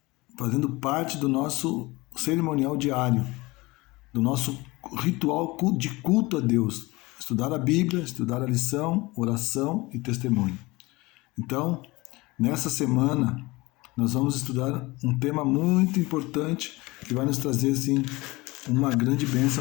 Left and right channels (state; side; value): quieter; right; 22.4 dB